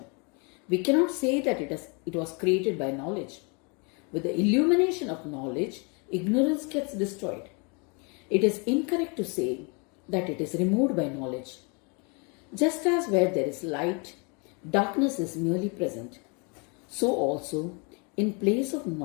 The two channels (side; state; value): right; quieter; 33.3 dB